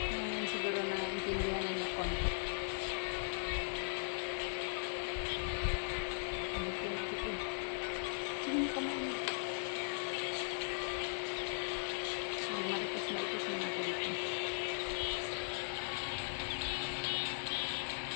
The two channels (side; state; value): right; silent; digital silence